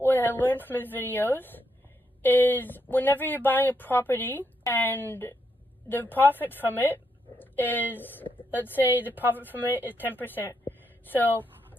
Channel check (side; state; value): both; normal; correlation 0.79